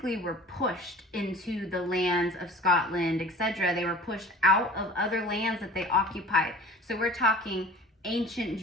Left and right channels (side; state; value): both; normal; correlation 0.43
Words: were pushed into the lands of Scotland, etc. They were pushed out of other lands that they occupied. So we're talking ancient